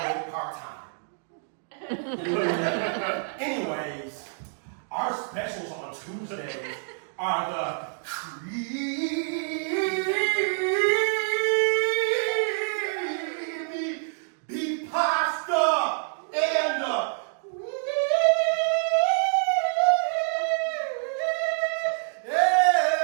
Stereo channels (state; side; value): silent; left; digital silence